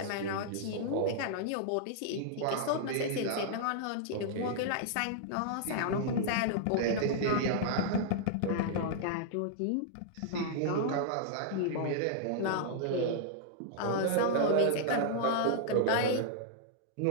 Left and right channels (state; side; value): different; both; correlation -0.01